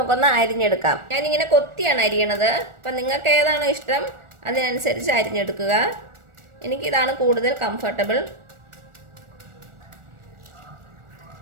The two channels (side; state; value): left; late; 1.4 ms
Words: അരിഞ്ഞെടുക്കാം. ഞാനിങ്ങനെ കൊത്തിയാണ് അരിയണത്. അപ്പം നിങ്ങൾക്ക് ഏതാണോ ഇഷ്ടം അതിനനുസരിച്ച് അരിഞ്ഞെടുക്കുക. എനിക്കിതാണ് കൂടുതൽ കംഫർട്ടബിൾ.